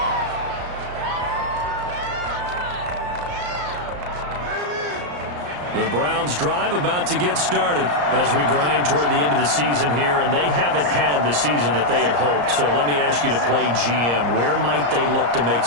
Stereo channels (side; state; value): left; late; 34 ms